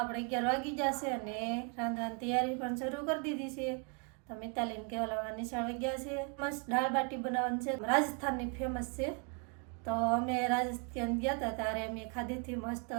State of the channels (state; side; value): quieter; left; 35.8 dB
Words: 11 વાગી જશે અને રાંધવાની તૈયારી પણ શરૂ કરી દીધી છે. તો મિતાલીને કેવલામાં નિશાળ ગયા છે. મસ્ત દાળ બાટી બનાવવાની છે, રાજસ્થાનની ફેમસ છે. તો અમે રાજસ્થાન ગયા હતા ત્યારે અમે ખાધીથી મસ્ત